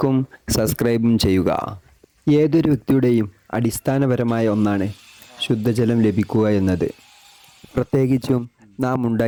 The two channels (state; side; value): identical; both; correlation 1.00